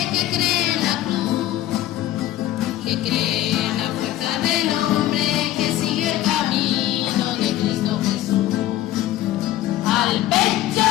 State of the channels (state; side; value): quieter; right; 13.9 dB